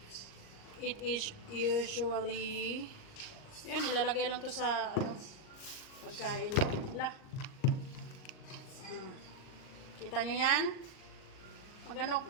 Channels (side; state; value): right; late; 38 ms